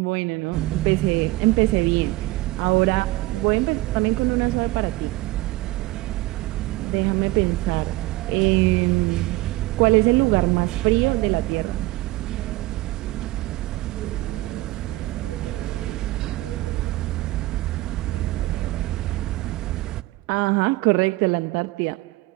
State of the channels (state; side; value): quieter; left; 19.2 dB